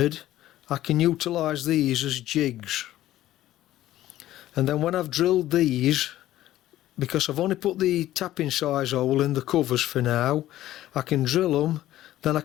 I can utilise these as jigs. And then when I've drilled these, because I've only put the tapping size hole in the covers for now, I can drill them, then I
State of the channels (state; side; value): quieter; right; 14.2 dB